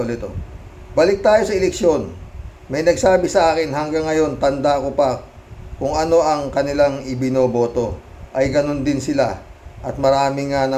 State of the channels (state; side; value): identical; both; correlation 1.00